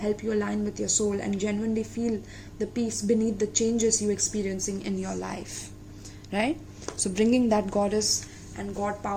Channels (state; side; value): identical; both; correlation 1.00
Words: you align with your soul and genuinely feel the peace beneath the changes you're experiencing in your life. Right? So bringing that goddess and God